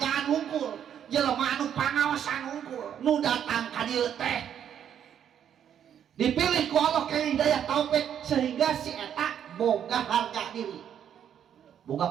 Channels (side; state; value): left; quieter; 9.2 dB